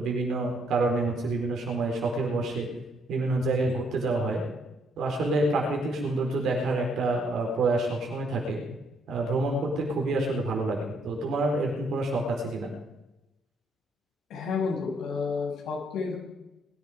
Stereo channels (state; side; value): normal; both; correlation 0.70